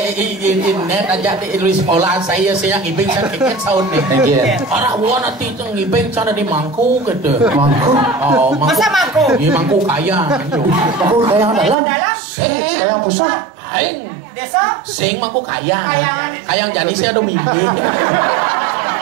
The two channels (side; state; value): left; drops out; at 11.8 s